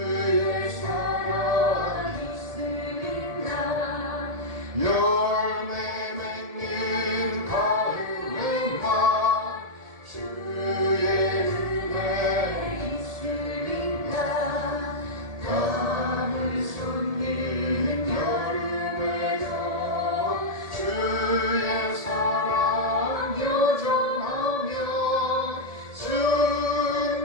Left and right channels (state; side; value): late; left; 1.7 ms